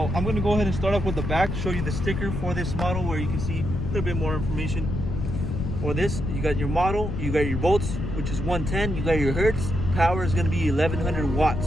I'm going to go ahead and start off with the back, show you the sticker for this model where you can see a little bit more information. For this, you got your model, you got your volts, which is 110, you got your hertz, power is going to be 1100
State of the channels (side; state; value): left; noise; rumble, 3 dB below the sound